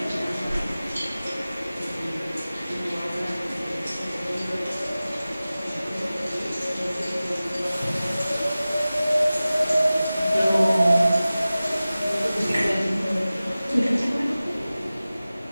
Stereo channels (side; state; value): both; inverted; correlation -0.97